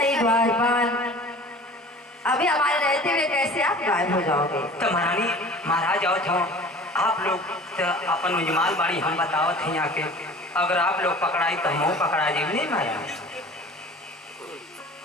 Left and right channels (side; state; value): both; normal; correlation 0.43